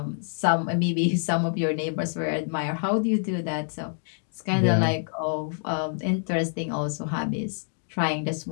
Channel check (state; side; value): silent; right; digital silence